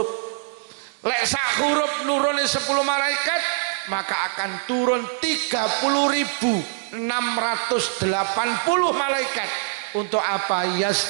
Lek sak huruf nurune 10 malaikat, maka akan turun 30.680 malaikat. Untuk apa?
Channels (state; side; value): silent; left; digital silence